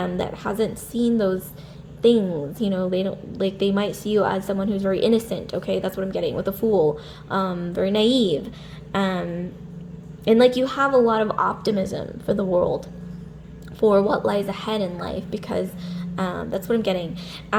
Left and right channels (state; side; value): identical; both; correlation 1.00